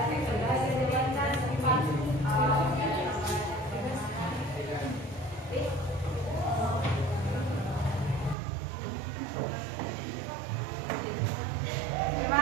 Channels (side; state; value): left; drops out; at 8.3 s